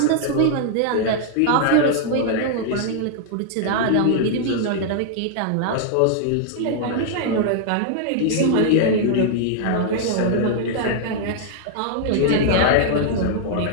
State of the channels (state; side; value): different; both; correlation -0.01